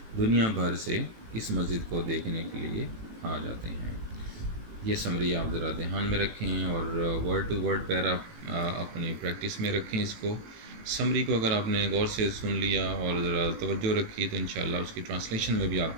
دنیا بھر سے اس مسجد کو دیکھنے کے لیے آ جاتے ہیں۔ یہ سمری آپ ذرا دھیان میں رکھیں، اور ورڈ ٹو ورڈ پیرا اپنی پریکٹس میں رکھیں اس کو۔ سمری کو اگر آپ نے غور سے سن لیا اور ذرا توجہ رکھی تو انشاءاللہ اس کی ٹرانسلیشن میں بھی آپ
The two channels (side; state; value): left; late; 18 ms